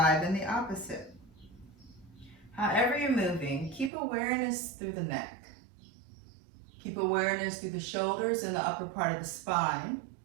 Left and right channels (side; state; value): left; drops out; at 3.9 s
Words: in the opposite. However you're moving, keep awareness through the neck. Keep awareness through the shoulders and the upper part of the spine.